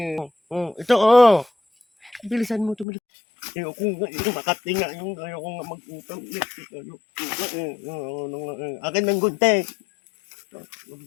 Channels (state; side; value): drops out; right; at 2.9 s